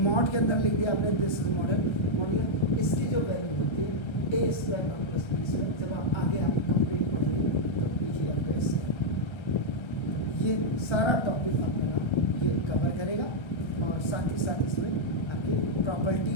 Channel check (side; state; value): right; late; 1.3 ms